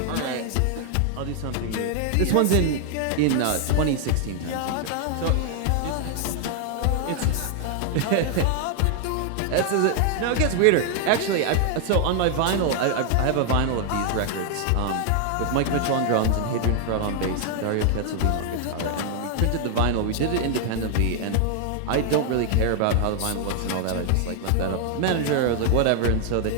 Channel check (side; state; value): both; different; correlation 0.00